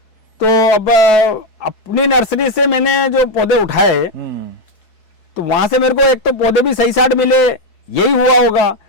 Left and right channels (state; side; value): late; right; 4.7 ms